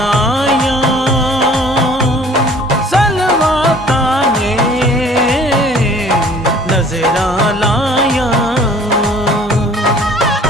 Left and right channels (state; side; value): normal; both; correlation 0.52